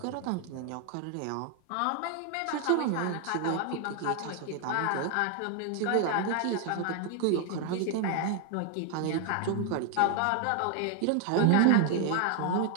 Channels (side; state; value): both; different; correlation 0.00